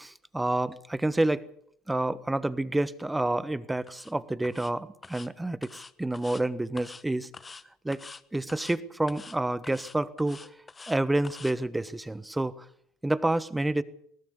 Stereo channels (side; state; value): both; normal; correlation 0.98